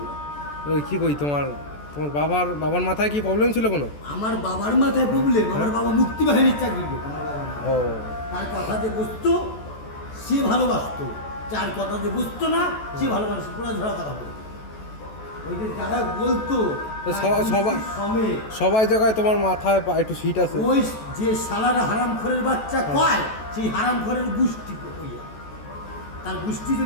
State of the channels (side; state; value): right; late; 14 ms